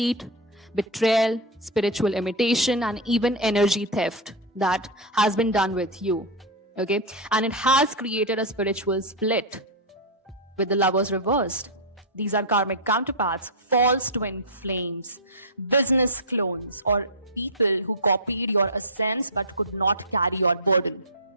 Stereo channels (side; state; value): both; normal; correlation -0.02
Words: betrayal, spiritual imitation, and even energy theft that has been done with you. Okay? And it has created a spiritual split with the lovers reversed. These are karmic counterparts, false twin flames, business clones, or people who copied your essence but could not carry your burden.